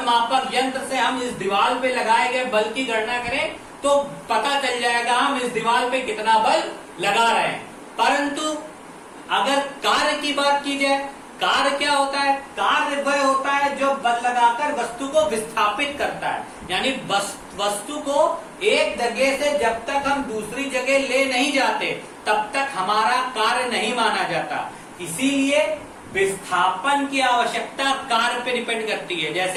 मापक यंत्र से हम इस दीवार पे लगाए गए बल की गणना करें तो पता चल जाएगा हम इस दीवार पे कितना बल लगा रहे हैं। परंतु अगर कार्य की बात की जाए, कार्य क्या होता है, कार्य वह होता है जो बल लगाकर वस्तु को विस्थापित करता है। यानी वस्तु को एक जगह से जब तक हम दूसरी जगह ले नहीं जाते तब तक हमारा कार्य नहीं माना जाता। इसीलिए विस्थापन की आवश्यकता कार्य पे डिपेंड करती है।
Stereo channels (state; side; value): identical; both; correlation 1.00